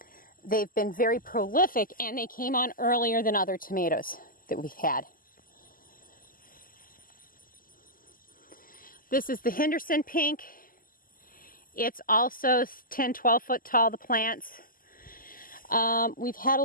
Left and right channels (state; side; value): late; right; 0.41 ms